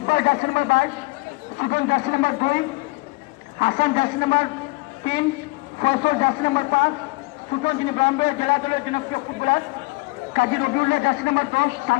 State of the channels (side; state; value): right; quieter; 24.8 dB